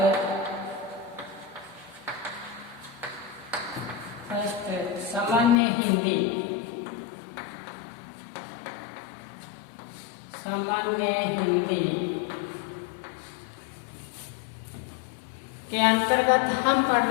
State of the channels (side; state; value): right; drops out; at 5.6 s